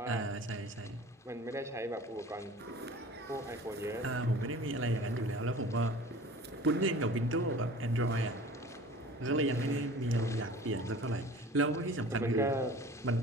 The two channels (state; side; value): normal; both; correlation 0.42